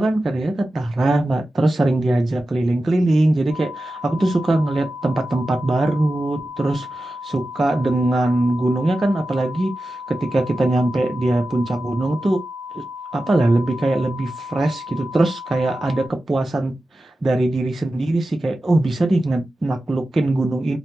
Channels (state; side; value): normal; both; correlation 0.93